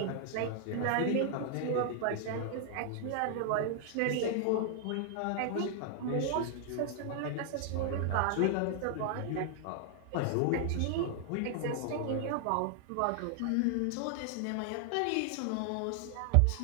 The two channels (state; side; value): different; both; correlation 0.00